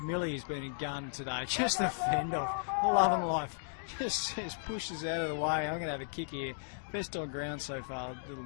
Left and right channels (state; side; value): silent; right; digital silence